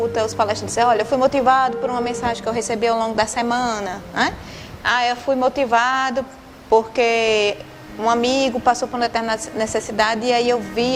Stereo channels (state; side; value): identical; both; correlation 1.00